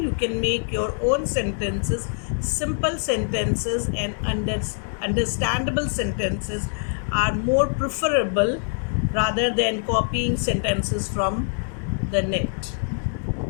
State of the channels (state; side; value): silent; right; digital silence